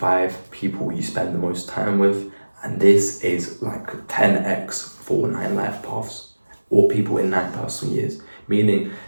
people you spend the most time with, and this is like 10x for 9 life paths or people in 9 personal years, meaning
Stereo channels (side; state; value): both; inverted; correlation -1.00